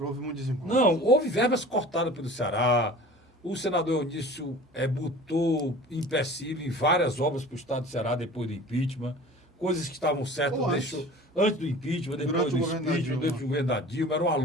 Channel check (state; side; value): normal; both; correlation 0.42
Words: muito desencontro. Não, houve verbas cortadas pelo Ceará. O senador Eunice botou empecilho em várias obras para o estado do Ceará depois do impeachment. Coisas que estavam certas, antes do impeachment, depois do impeachment, durante o governo da Dilma. Era uma